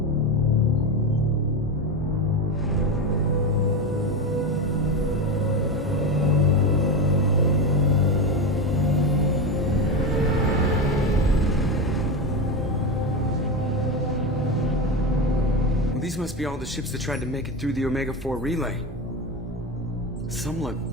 Well, these must be all the ships that tried to make it through the Omega-4 relay. Some look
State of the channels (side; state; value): both; normal; correlation 0.17